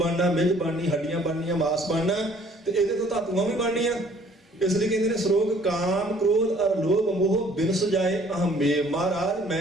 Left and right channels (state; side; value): normal; both; correlation 0.57